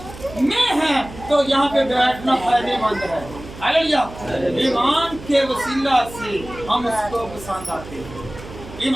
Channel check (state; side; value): noise; right; hum, 15 dB below the sound